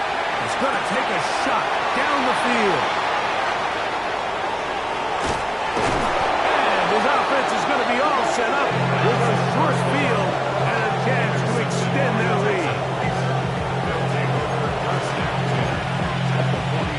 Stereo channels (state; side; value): identical; both; correlation 1.00